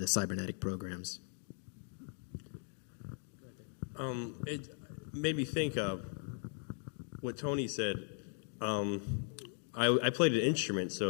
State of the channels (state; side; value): silent; right; 52 dB below the other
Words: the cybernetic programs. It made me think of what Tony said. I played an instrument,